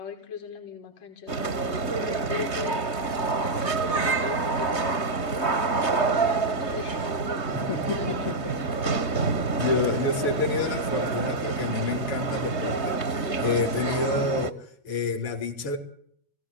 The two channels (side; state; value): right; late; 3.2 ms